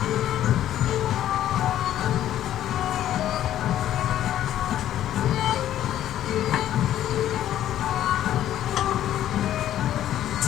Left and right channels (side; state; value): right; quieter; 12.0 dB